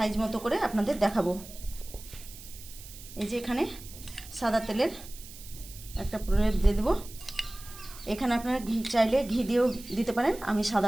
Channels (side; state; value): right; noise; hiss, 16 dB below the sound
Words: মতো করে আপনাদের দেখাবো। এই যে এখানে সাদা তেলের একটা প্রলেপ দিয়ে দেবো। এখানে আপনারা ঘি চাইলে ঘি দিয়েও দিতে পারেন, আমি